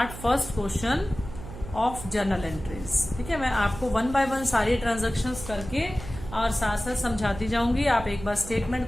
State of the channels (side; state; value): right; noise; hum, 12 dB below the sound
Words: first question of journal entries, ठीक है। मैं आपको वन बाय वन सारी ट्रांजेक्शन्स करके और साथ साथ समझाती जाऊंगी, आप एक बार